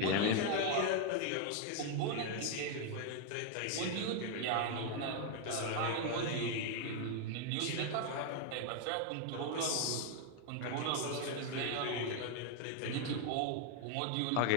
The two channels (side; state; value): both; different; correlation 0.00